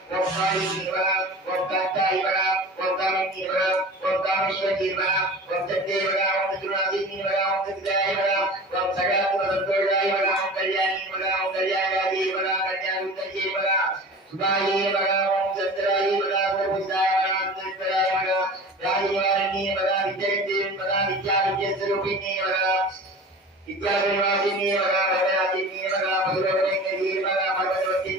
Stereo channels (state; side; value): normal; both; correlation 0.37